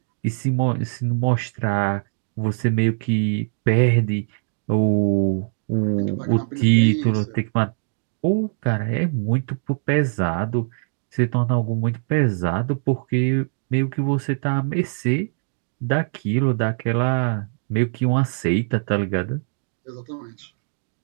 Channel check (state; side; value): silent; left; digital silence